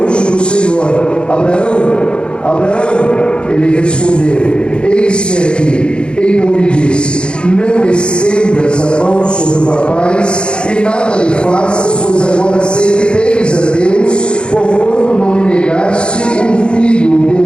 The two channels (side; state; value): right; late; 0.054 ms